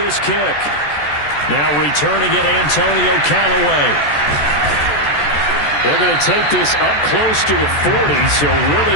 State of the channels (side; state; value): right; late; 14 ms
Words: kick. Now returning it, Antonio Callaway. They're going to take this up close to the 40, so